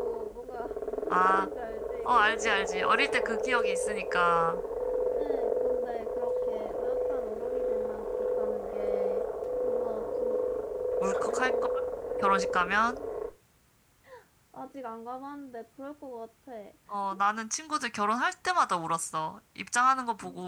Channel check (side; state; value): both; identical; correlation 1.00